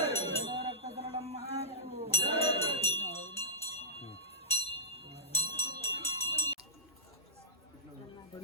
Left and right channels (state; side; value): normal; both; correlation -0.19